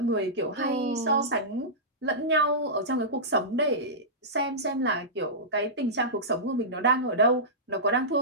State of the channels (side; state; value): both; normal; correlation -0.17